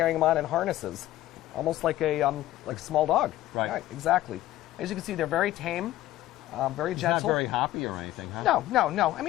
them on in harnesses, almost like a small dog. Right. Exactly. As you can see, they're very tame, very He's not gentle. very hoppy or anything, huh? No. I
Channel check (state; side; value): quieter; right; 14.9 dB